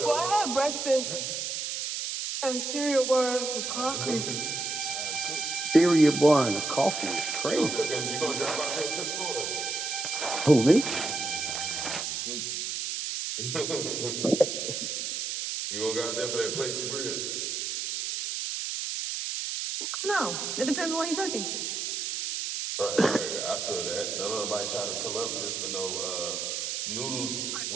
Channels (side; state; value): right; noise; hiss, 3 dB below the sound